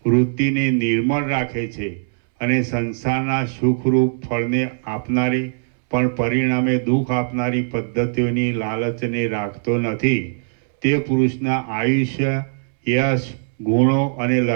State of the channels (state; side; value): silent; left; 65 dB below the other